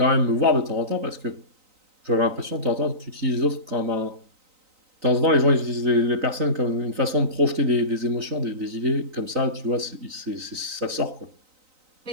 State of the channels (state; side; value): late; left; 3.9 ms